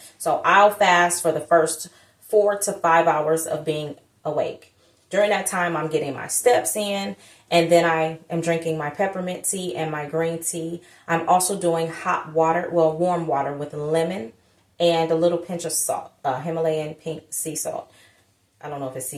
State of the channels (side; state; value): both; identical; correlation 1.00